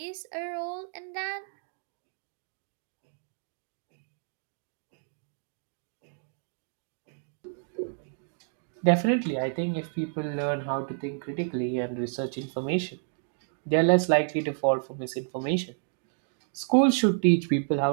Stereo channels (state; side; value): silent; left; digital silence